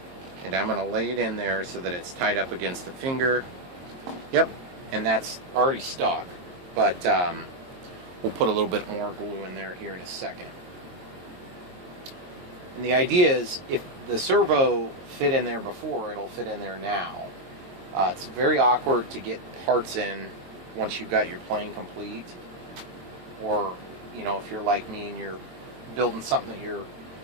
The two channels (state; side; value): late; left; 22 ms